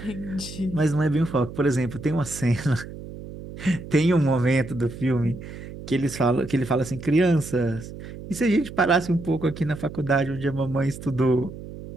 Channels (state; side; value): noise; right; hum, 12 dB below the sound